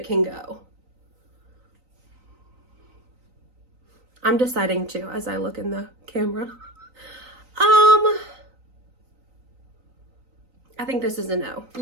can go. I'm deciding too as I look in the camera. I think this is a no.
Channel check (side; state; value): left; late; 3.9 ms